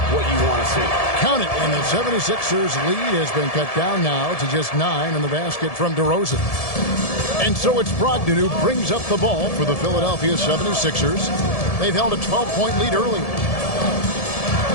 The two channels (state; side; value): late; right; 1.7 ms